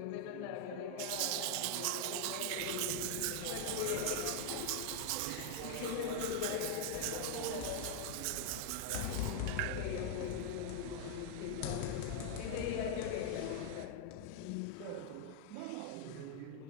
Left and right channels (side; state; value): both; different; correlation 0.00